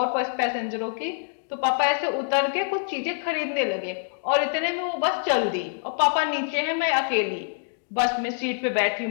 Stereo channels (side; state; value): right; silent; digital silence